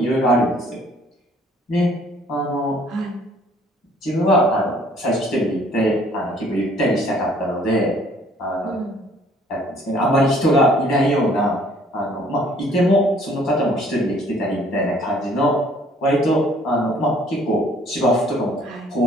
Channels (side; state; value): both; normal; correlation 0.59